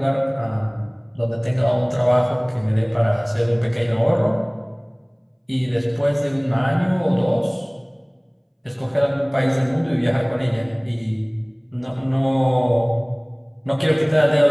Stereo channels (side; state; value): both; identical; correlation 1.00